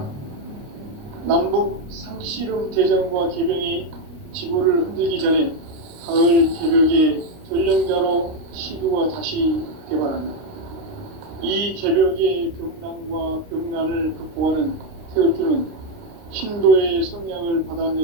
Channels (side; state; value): left; late; 29 ms